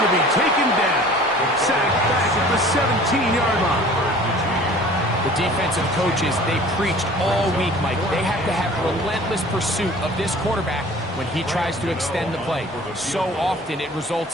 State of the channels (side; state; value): both; normal; correlation 0.47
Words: to be taken down. Sacked back at the 17-yard line. The defensive coaches, they preached all week, Mike. They have to have relentless pursuit of this quarterback when he tries to extend the play. So often it